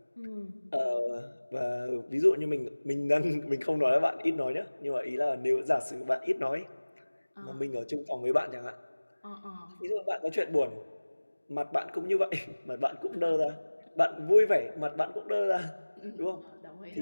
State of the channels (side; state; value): both; inverted; correlation -1.00